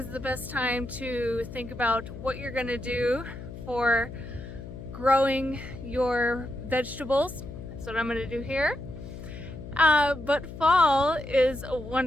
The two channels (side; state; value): left; noise; hum, 11 dB below the sound